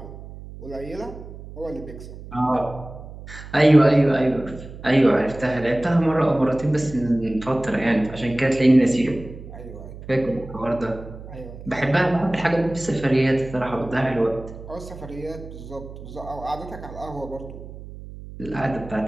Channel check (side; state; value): right; noise; hum, 14 dB below the sound